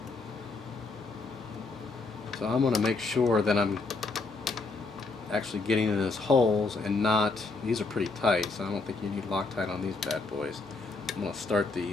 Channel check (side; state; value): right; quieter; 3.8 dB